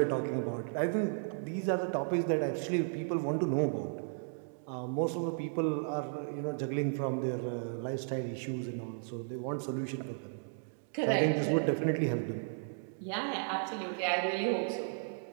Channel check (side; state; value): left; silent; digital silence